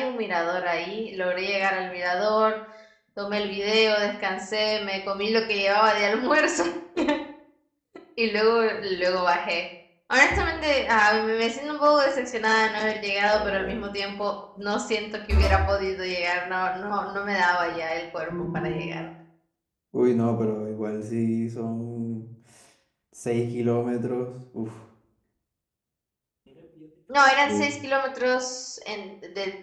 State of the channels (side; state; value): both; identical; correlation 1.00